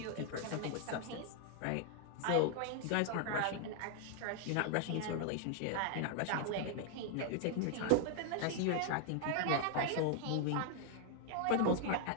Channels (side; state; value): both; different; correlation 0.00